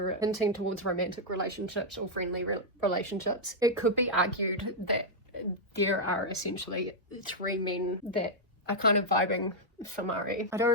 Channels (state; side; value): normal; both; correlation -0.04